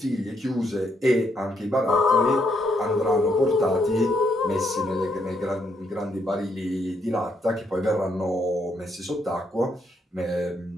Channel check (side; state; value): both; normal; correlation 0.75